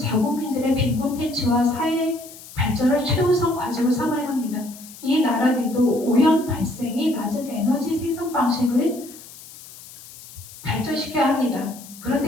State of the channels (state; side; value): noise; left; hiss, 18 dB below the sound